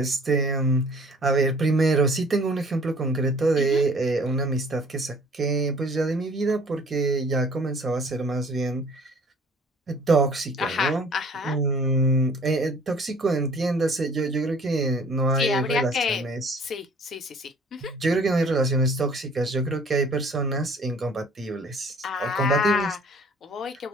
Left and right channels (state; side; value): normal; both; correlation 0.52